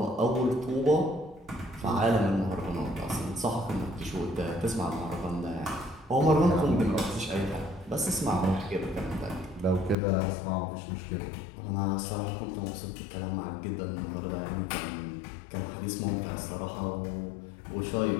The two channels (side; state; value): right; drops out; at 10.0 s